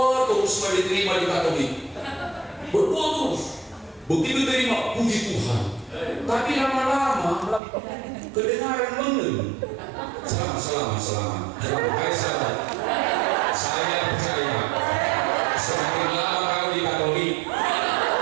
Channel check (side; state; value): left; drops out; at 7.6 s